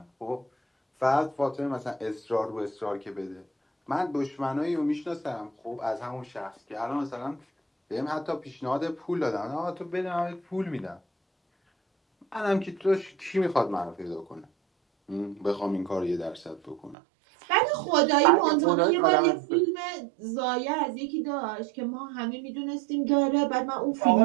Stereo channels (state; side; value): drops out; left; at 16.9 s